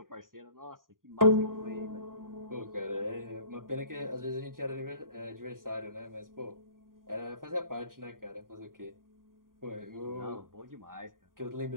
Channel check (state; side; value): late; left; 0.91 ms